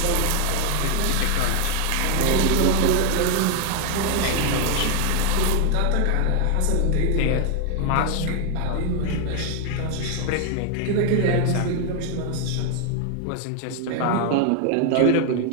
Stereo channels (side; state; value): both; different; correlation 0.01